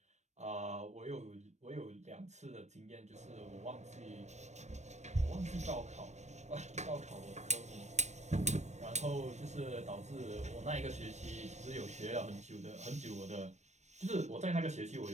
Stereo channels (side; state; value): left; late; 0.34 ms